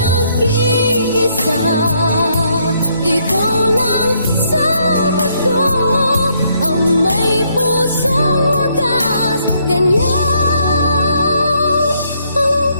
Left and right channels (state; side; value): inverted; both; correlation -0.71